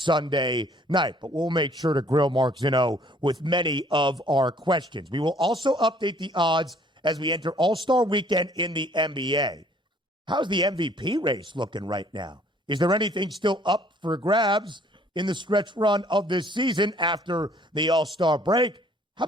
night. But we'll make sure to grill Mark Zinno with many of our questions. We will also update the odds as we enter All-Star Weekend in the NBA. How's the MVP race looking right now? Is there anything still up for grabs in the stretch run of this season after the All-Star break? How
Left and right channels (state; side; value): normal; both; correlation 0.59